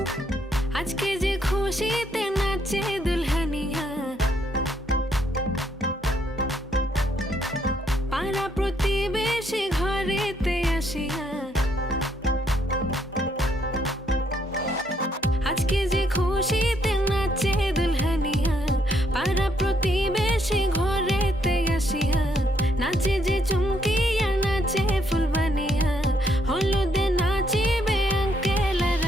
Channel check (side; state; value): both; normal; correlation 0.72